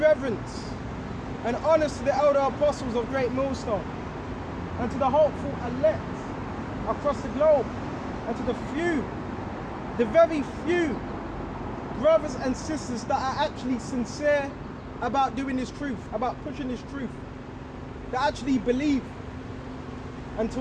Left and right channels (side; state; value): both; identical; correlation 1.00